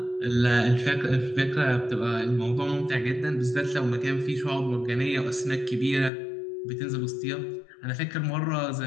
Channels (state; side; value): drops out; right; at 6.1 s